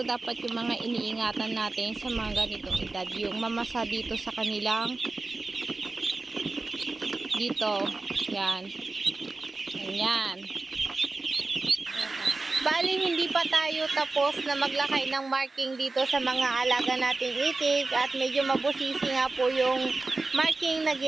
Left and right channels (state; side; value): quieter; left; 3.4 dB